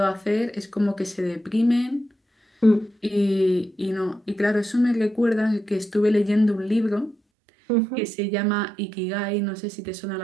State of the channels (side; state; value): left; drops out; at 7.2 s